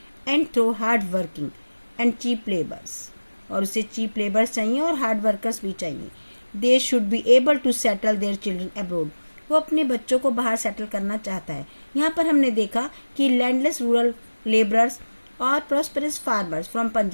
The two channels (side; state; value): both; inverted; correlation -1.00